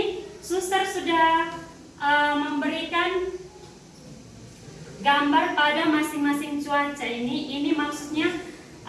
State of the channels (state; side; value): identical; both; correlation 1.00